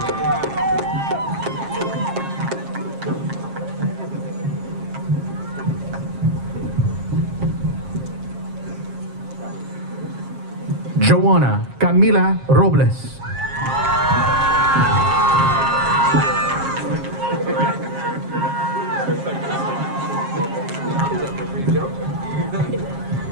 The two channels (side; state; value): left; late; 7.4 ms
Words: Joanna Camila Robles.